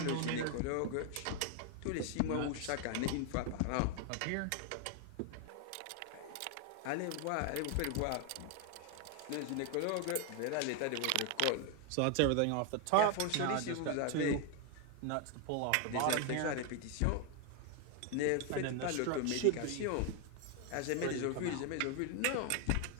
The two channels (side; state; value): both; different; correlation 0.01